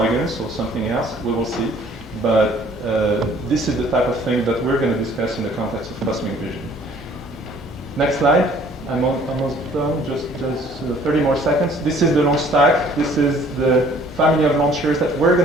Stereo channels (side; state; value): both; normal; correlation 0.56